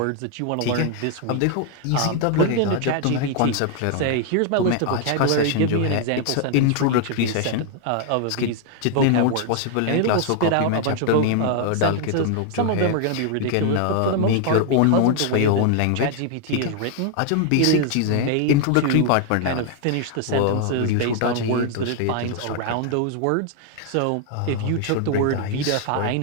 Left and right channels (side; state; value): both; different; correlation 0.00